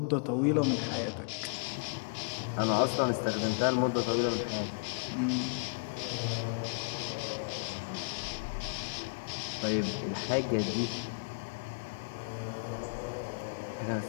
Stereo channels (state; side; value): quieter; right; 38.0 dB